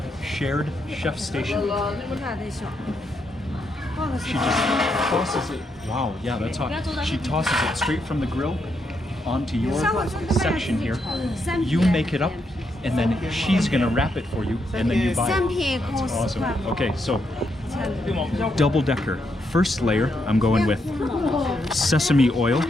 shared chef station. She just tosses it. Wow, yeah, that's hot. She tosses it straight from the grill onto your section here. You make it up, and then she's gonna wrap it for you, and then you buy it. That's awesome. Okay, so double decker. First layer, I'm going with sesame oil,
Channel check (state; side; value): normal; both; correlation 0.79